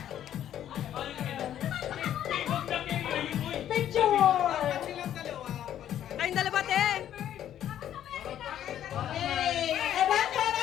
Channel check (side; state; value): right; quieter; 10.9 dB